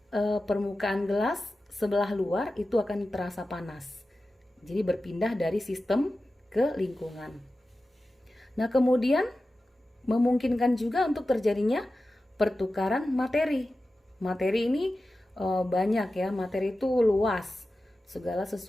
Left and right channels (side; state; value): both; normal; correlation 0.94